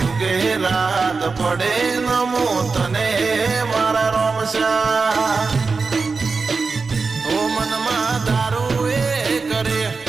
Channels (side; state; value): left; quieter; 4.5 dB